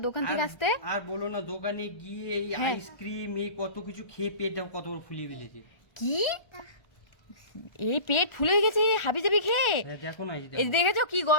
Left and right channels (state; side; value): late; right; 1.4 ms